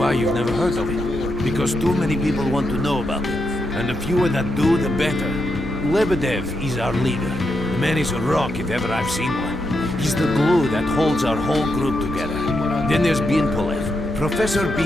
you've never heard of it? Because too many people want to know about it. And the fewer that do, the better. Lebedev is our leader. The man is a rock if ever I've seen one. He's the glue that holds our whole group together. Then there's Binpolev, Professor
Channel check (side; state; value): both; normal; correlation 0.83